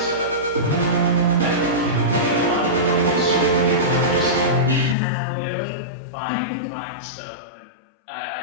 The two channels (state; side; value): drops out; right; at 5.0 s